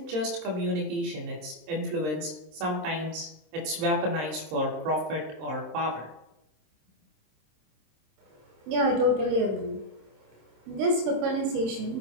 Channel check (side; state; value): left; late; 26 ms